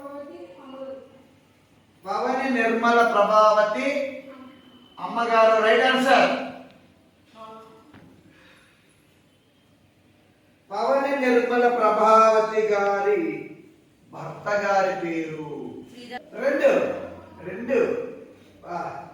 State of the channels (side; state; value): both; identical; correlation 1.00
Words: పవని నిర్మల ప్రభావతి అమ్మగారు. Right answer. పవని నిర్మల ప్రభావతి గారి భర్త గారి పేరు రెండు రెండు